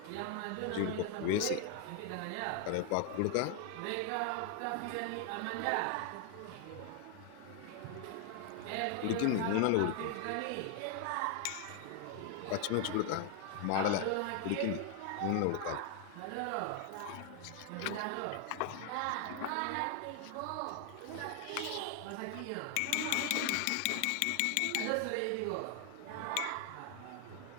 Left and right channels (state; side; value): different; both; correlation 0.00